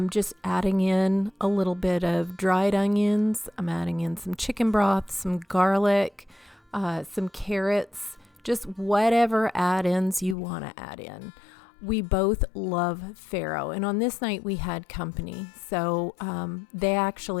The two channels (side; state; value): right; drops out; at 10.4 s